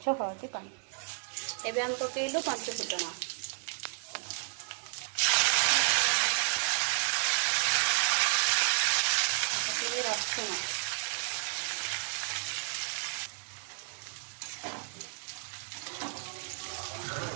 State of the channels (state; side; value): silent; left; digital silence